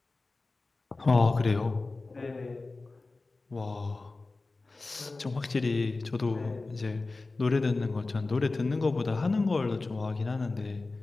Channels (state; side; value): quieter; right; 3.5 dB